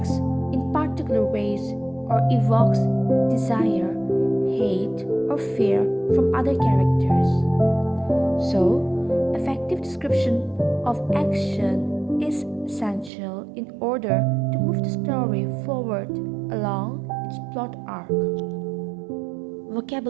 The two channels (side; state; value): left; drops out; at 13.1 s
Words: in particular ways or evokes desire, hate, or fear from other characters. So, effective description of action is essential in order to move the story forward along its plot arc.